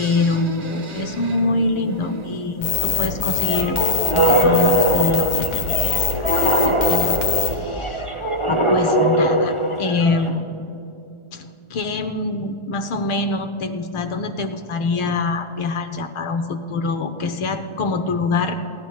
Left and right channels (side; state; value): right; late; 1.4 ms